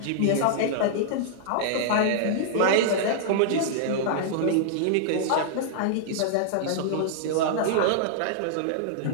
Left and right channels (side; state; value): both; different; correlation -0.01